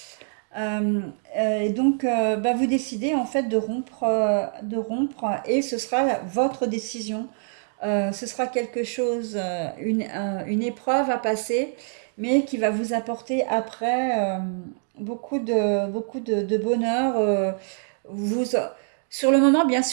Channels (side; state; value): left; silent; digital silence